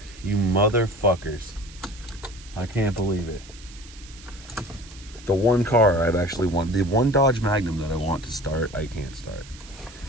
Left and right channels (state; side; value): noise; right; hiss, 20 dB below the sound